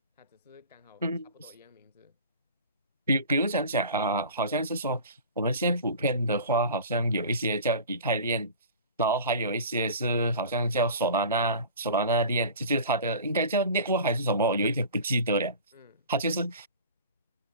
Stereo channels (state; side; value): inverted; both; correlation -0.39